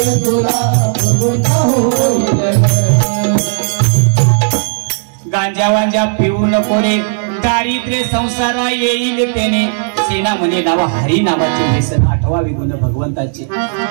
तुला गुरगुंडा होईल. गांजा वांजा पिऊ नको रे, दारिद्र्य संसारा येईल त्याने. सेना म्हणे नावा हरी नावाचे व्यसन, 8वा गुण भगवंताचे.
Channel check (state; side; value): silent; left; digital silence